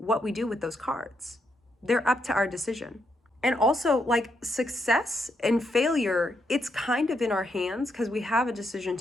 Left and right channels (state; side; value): normal; both; correlation 0.79